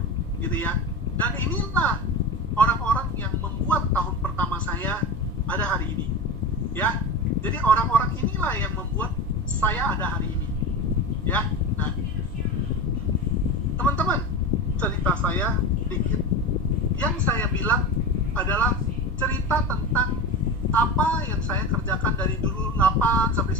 gitu ya. Dan inilah orang-orang yang membuat tahun pertama saya ada hari ini. Ya, jadi orang-orang inilah yang membuat saya ada hari ini. Ya, nah, teman-teman, cerita saya sedikit. Yang saya bilang adalah cerita tentang apa yang saya kerjakan dari dulu 8 sampai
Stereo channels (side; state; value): right; noise; rumble, 14 dB below the sound